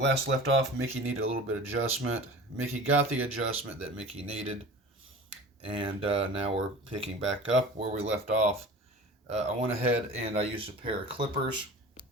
left off, Mickey needed a little bit of adjustment. Mickey got the adjustment that Mickey needed, and now we're picking back up where we left off. I went ahead and I used a pair of clippers.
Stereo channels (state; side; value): normal; both; correlation 0.38